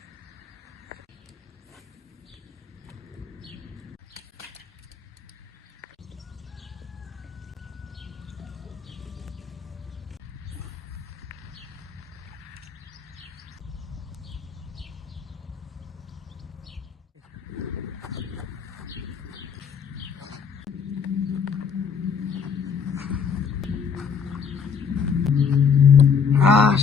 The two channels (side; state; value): right; quieter; 6.2 dB